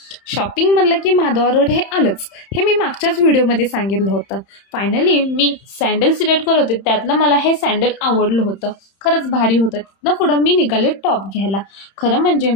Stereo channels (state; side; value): late; right; 31 ms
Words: शॉपिंग म्हणलं की माधवा रोड हे आलंच, हे मी मागच्याच व्हिडिओमध्ये सांगितलं होतं. फायनली मी सँडल सिलेक्ट करत होते, त्यातलं मला हे सँडल आवडलं होतं, खरंच भारी होतं. तिथनं पुढं मी निघाले टॉप घ्यायला. खरं म्हणजे